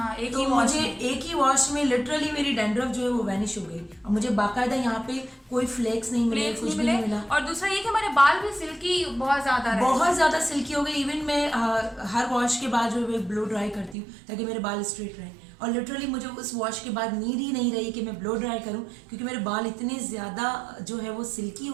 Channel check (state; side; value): drops out; left; at 14.0 s